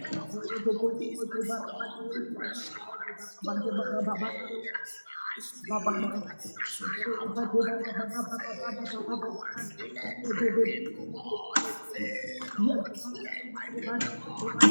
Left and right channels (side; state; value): both; inverted; correlation -1.00